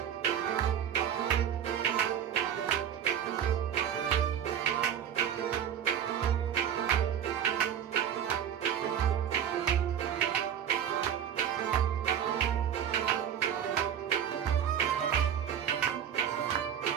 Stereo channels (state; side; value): quieter; left; 9.2 dB